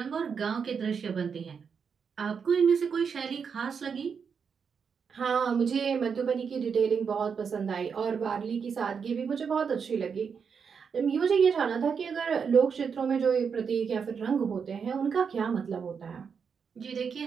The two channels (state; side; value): quieter; left; 6.3 dB